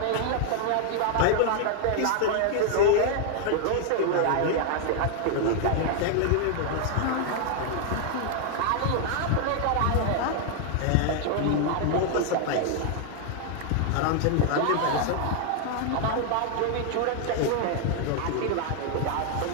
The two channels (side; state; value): both; different; correlation 0.00